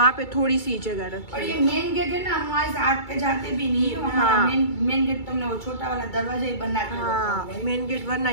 पे थोड़ी सी जगह रखी। और ये मेन गेट है ना, वहाँ से आग पे जाते भी नहीं है। हाँ। मेन गेट तुमने वो छोटा वाला दरवाजा ही बना के हाँ, मेन गेट वरना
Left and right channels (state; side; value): late; right; 2.3 ms